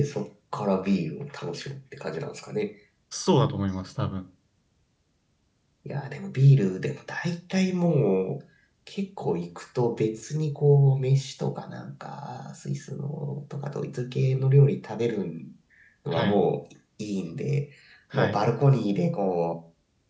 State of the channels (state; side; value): identical; both; correlation 1.00